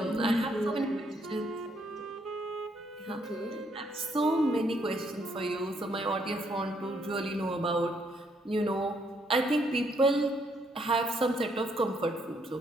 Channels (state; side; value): normal; both; correlation 0.71